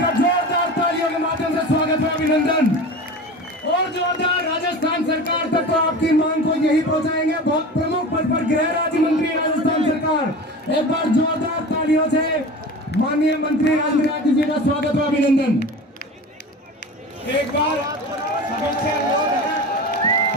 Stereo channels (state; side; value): normal; both; correlation 0.33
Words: का जोरदार तालियों के माध्यम से स्वागत है, अभिनंदन। और जोरदार राजस्थान सरकार तक तो आपकी मांग को यही पहुंचाएंगे, बहुत प्रमुख पद पर गृह राज्य मंत्री राजस्थान सरकार। एक बार जोरदार तालियों से माननीय मंत्री राजेंद्र यादव जी का स्वागत है, अभिनंदन। एक बार